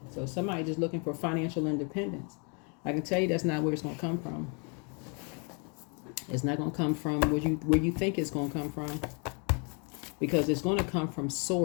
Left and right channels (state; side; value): quieter; right; 36.2 dB